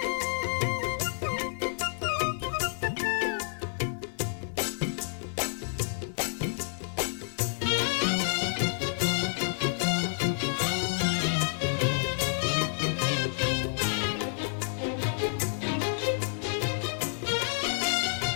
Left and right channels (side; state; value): right; silent; digital silence